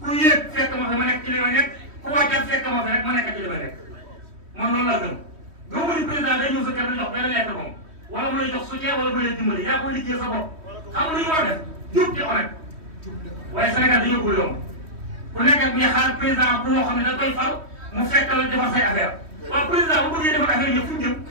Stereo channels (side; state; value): left; late; 3.1 ms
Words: ku yéeg fekk ma fi ma nekk ci li ma nekk ku wàccaat fekk ma fi rek ma nekk ci li ma nekk man loolu laa gëm gëmu ni président day ñëw sa kër di jox benn lettre moom wala mu lay jox soutien wala mu lay dimbali yaa koy liggéey sa bopp xam lu ñu war a def jub te honnête waaye Sénégal dañoo ko yomb ku nekk ak ñuy xaar président bu moo xam ne da koy fal mu fekk la defar say affaire waaw président bu bëggee defar affaire yëpp fu ñu jëm